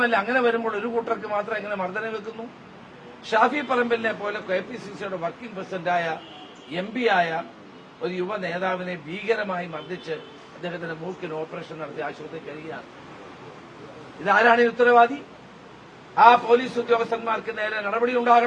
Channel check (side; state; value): both; identical; correlation 1.00